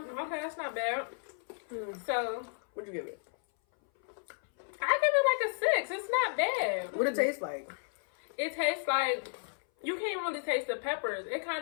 Okay, that's not bad. So, What'd you give it? I give it like a 6. It's not bad. What it taste like? It tastes like, you can't really taste the peppers. It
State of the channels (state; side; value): silent; right; 56 dB below the other